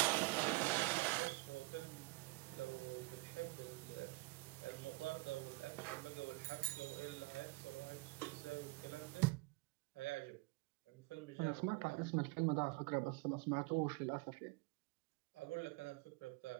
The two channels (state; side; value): quieter; left; 24.4 dB